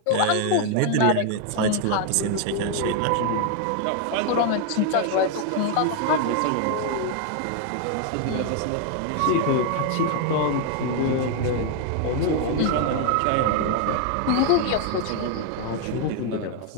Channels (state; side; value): different; both; correlation 0.00